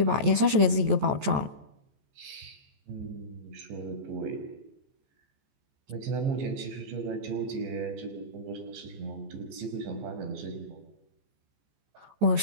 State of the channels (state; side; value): late; left; 14 ms